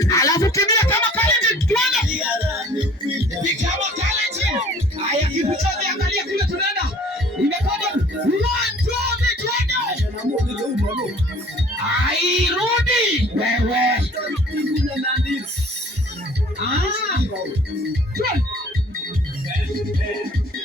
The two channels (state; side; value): normal; both; correlation 0.51